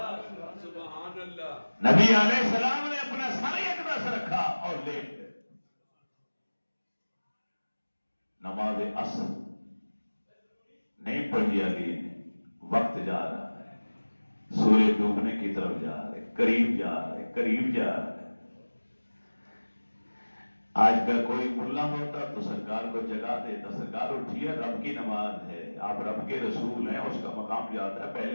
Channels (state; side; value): inverted; both; correlation -1.00